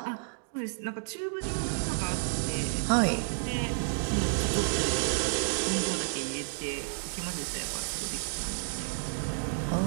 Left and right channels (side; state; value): left; silent; digital silence